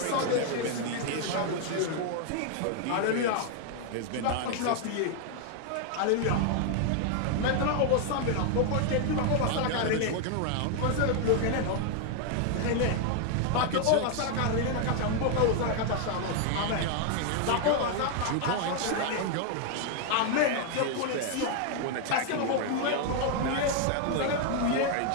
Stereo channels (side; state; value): both; different; correlation 0.00